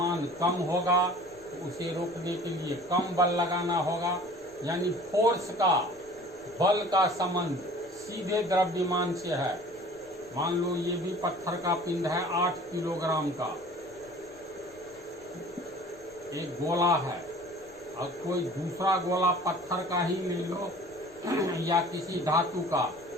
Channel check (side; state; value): left; noise; rumble, 27 dB below the sound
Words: कम होगा तो उसे रोकने के लिए कम बल लगाना होगा। यानी फोर्स का, बल का संबंध सीधे द्रव्यमान से है। मान लो ये भी पत्थर का पिंड है 8 किलोग्राम का, एक गोला है, और कोई दूसरा गोला पत्थर का ही ले लो या किसी धातु का,